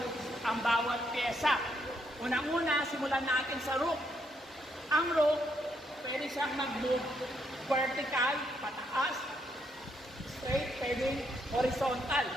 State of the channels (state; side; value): normal; both; correlation 0.75